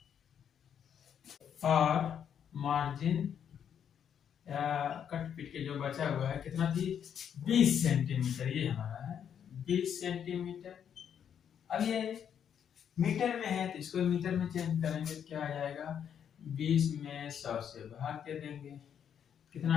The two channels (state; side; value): quieter; right; 8.5 dB